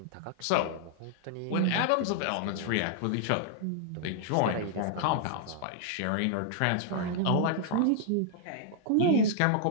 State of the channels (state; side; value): different; both; correlation -0.01